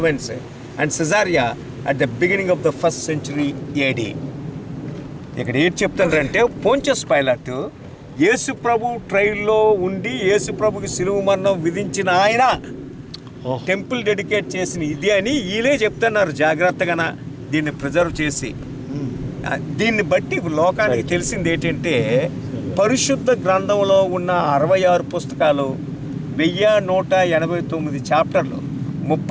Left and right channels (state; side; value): identical; both; correlation 1.00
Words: and Caesarea at the beginning of the 1st century AD. ఇక్కడ ఏం చెప్తారంటే పోంచస్ పైలాట్ యేసు ప్రభు ట్రైల్లో ఉండి యేసు ప్రభుకి సిలువ మరణం విధించిన ఆయన టెంపుల్ డెడికేట్ చేసిన ఇది అని వీళ్ళే చెప్తున్నారు జాగ్రత్తగా దీన్ని ప్రిజర్వ్ చేసి. దీన్ని బట్టి లోకానికి తెలిసింది ఏంటంటే పరిశుద్ధ గ్రంథంలో ఉన్న 66 పుస్తకాలు, 1189 చాప్టర్లు,